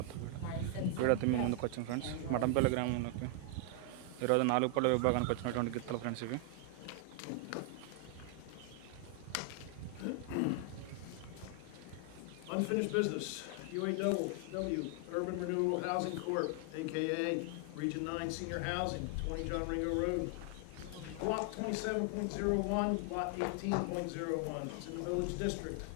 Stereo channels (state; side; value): different; both; correlation 0.00